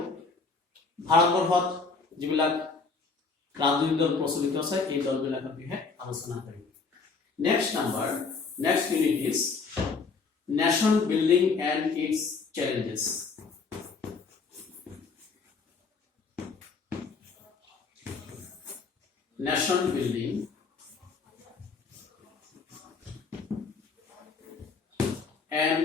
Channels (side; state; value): right; quieter; 4.5 dB